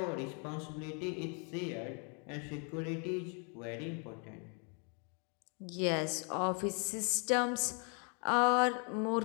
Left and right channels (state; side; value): quieter; right; 38.0 dB